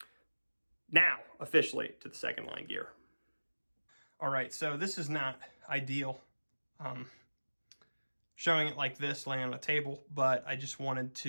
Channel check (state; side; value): inverted; both; correlation -1.00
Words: Now, officially to the second line gear. All right, so this is not ideal, showing it like this, laying on a table, but I just wanted